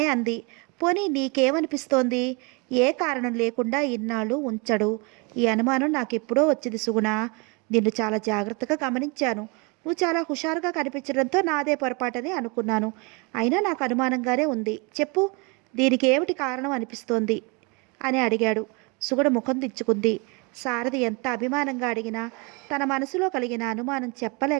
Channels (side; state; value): left; quieter; 30.3 dB